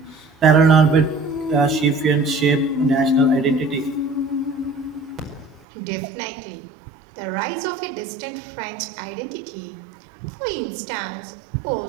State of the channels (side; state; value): left; drops out; at 5.7 s